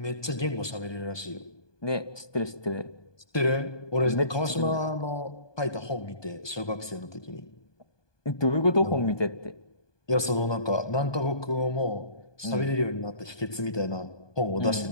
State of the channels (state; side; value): late; right; 1.2 ms